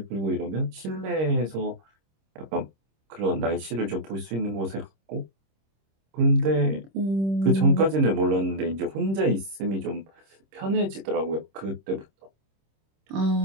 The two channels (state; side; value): late; left; 26 ms